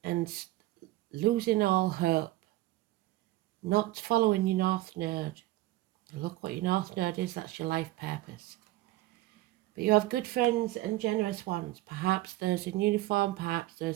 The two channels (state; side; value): quieter; left; 17.6 dB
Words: and losing all hope. Not following your North Node. Look what your North Node is, that's your life purpose. But you have good friends and generous ones. Perhaps those in uniform, perhaps